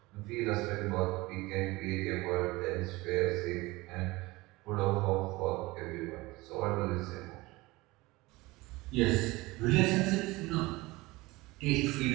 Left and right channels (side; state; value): left; quieter; 21.3 dB